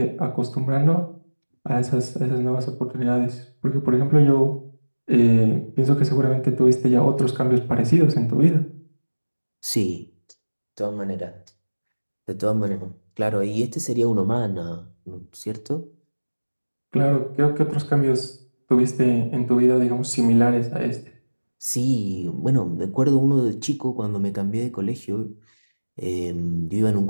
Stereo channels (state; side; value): inverted; both; correlation -1.00